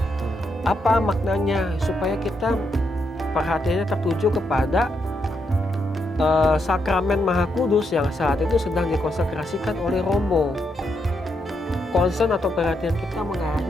apa maknanya? Supaya kita perhatiannya tertuju kepada sakramen Maha Kudus yang saat itu sedang dikonsekrasikan oleh Romo. Concern atau perhatian kita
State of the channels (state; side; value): normal; both; correlation 0.80